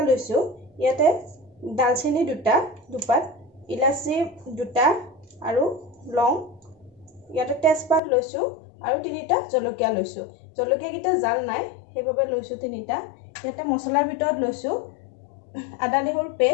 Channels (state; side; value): drops out; right; at 8.0 s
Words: লৈছো। ইয়াতে দালচেনি 2টা, দুপাত, ইলাচি 2টা আৰু লং, ইয়াতে তেজপাত লৈছো আৰু 3টা জলকীয়া লৈছো। জলকীয়া কিটা জাল নাই সেইভাবে লৈছো 3টা। ইয়াতে মছলাৰ ভিতৰত লৈছো আদা নহৰু